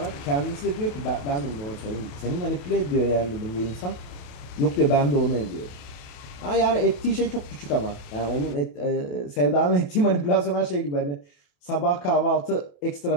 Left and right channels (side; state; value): right; late; 28 ms